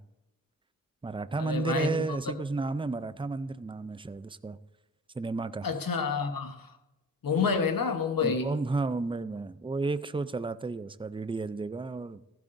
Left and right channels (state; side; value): normal; both; correlation 0.40